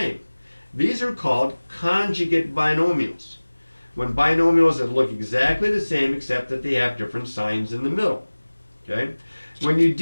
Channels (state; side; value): inverted; both; correlation -1.00